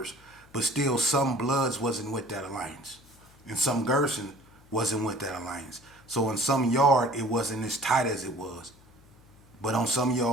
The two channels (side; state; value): left; noise; hum, 26 dB below the sound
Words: But still, some Bloods wasn't with that alliance. And some Gerson wasn't with that alliance. So in some yard, it wasn't as tight as it was. But on some